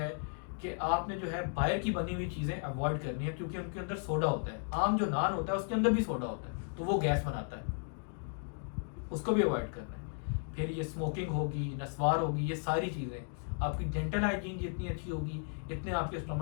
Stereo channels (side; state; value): right; silent; 54 dB below the other